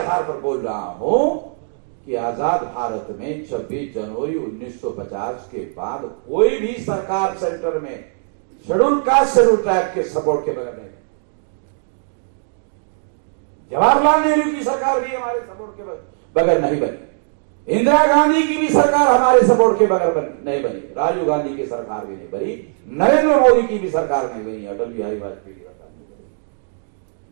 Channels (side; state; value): left; silent; digital silence